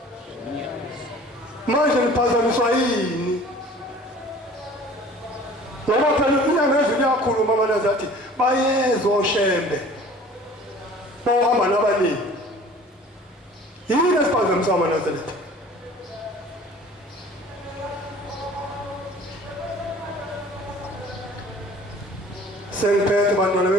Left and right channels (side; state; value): both; normal; correlation 0.47